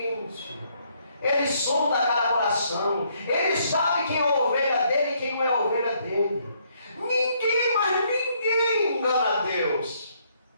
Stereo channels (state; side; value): inverted; both; correlation -0.70